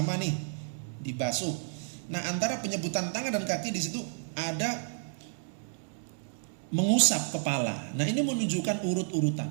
nih, dibasuh. Nah, antara penyebutan tangan dan kaki di situ ada mengusap kepala. Nah, ini menunjukkan urut-urutan.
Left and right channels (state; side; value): silent; left; digital silence